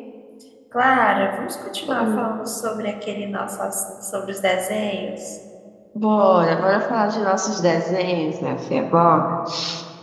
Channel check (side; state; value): both; identical; correlation 1.00